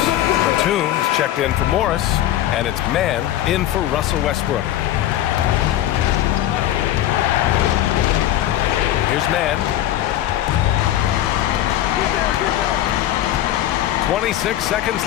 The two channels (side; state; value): right; quieter; 13.0 dB